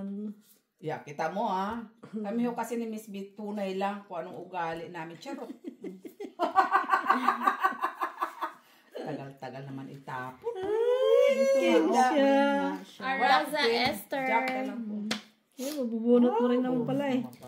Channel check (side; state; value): both; identical; correlation 1.00